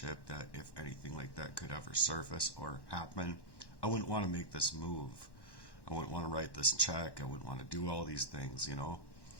that if anything like that could ever surface or happen, I wouldn't want to make this move. I wouldn't want to write this check. I wouldn't want to do all these things.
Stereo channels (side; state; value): right; late; 1.1 ms